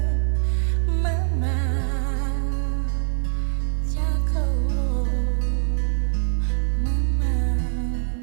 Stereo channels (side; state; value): left; silent; 63 dB below the other